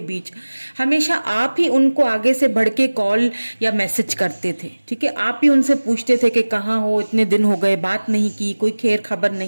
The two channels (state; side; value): inverted; both; correlation -1.00